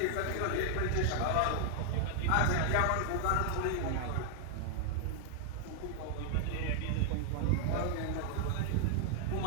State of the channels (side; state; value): both; different; correlation 0.00